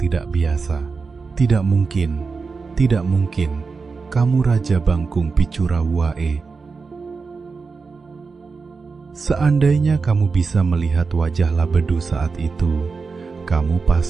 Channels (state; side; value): quieter; left; 4.7 dB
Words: biasa. Tidak mungkin, kamu Raja Bangkung Picura Wae. Seandainya kamu bisa melihat wajah Labedu saat itu, kamu